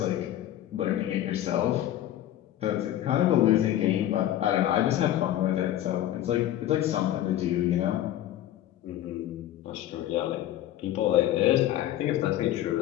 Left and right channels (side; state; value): right; quieter; 12.7 dB